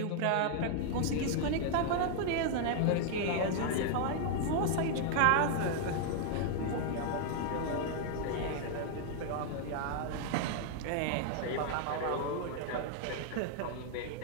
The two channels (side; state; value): both; different; correlation 0.00